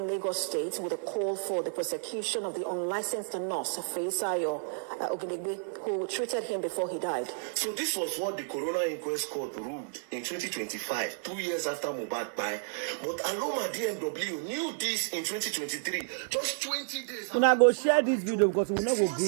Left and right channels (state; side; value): silent; left; digital silence